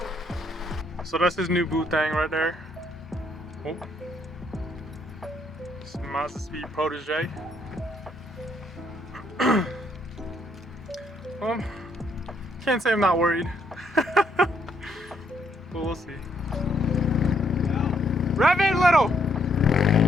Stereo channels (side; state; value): both; normal; correlation 0.72